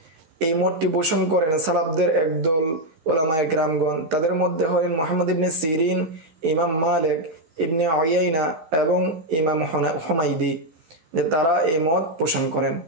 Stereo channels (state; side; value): late; left; 13 ms